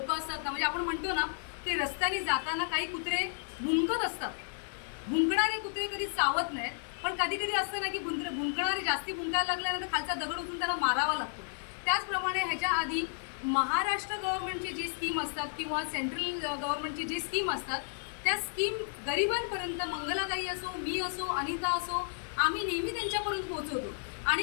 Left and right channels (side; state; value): right; silent; digital silence